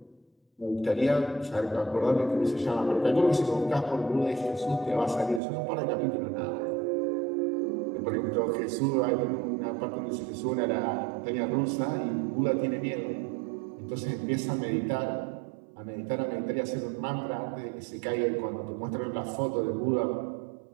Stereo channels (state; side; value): drops out; left; at 5.4 s